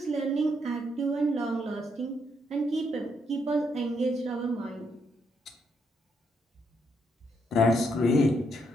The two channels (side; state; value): both; normal; correlation 0.76